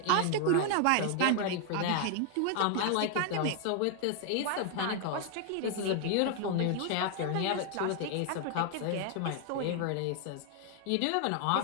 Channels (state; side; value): different; both; correlation 0.00